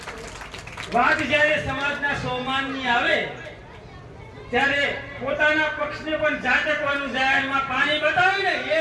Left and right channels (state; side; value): identical; both; correlation 1.00